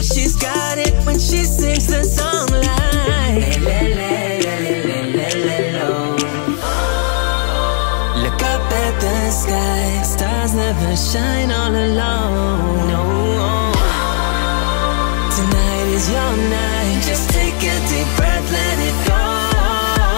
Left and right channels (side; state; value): right; silent; digital silence